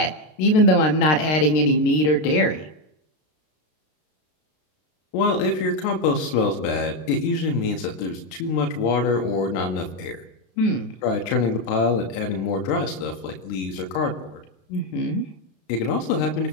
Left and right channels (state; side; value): late; right; 33 ms